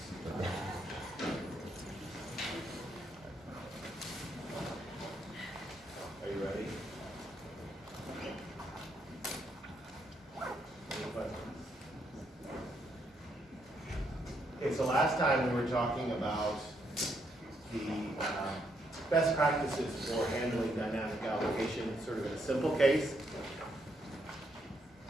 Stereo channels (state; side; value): normal; both; correlation 0.76